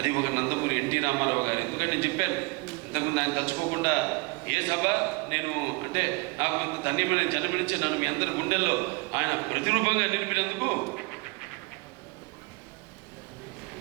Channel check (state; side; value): quieter; left; 27.3 dB